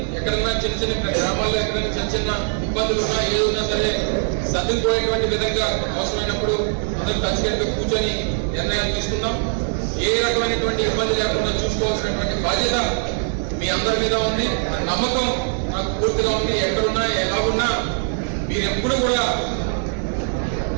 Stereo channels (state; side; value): silent; left; 65 dB below the other